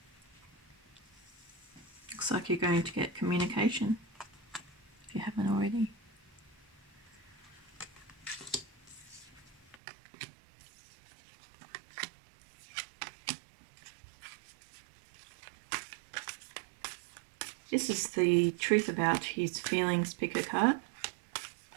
Looks like you're going to get communication, if you haven't already. This is the truth about his feelings picker card.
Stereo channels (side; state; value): left; drops out; at 9.8 s